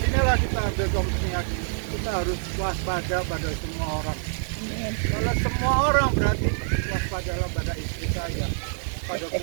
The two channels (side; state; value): left; silent; 61 dB below the other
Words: kita ambil komisinya, kita harus waspada pada semua orang. Kalau semua orang berarti waspadalah pada istri saya, pada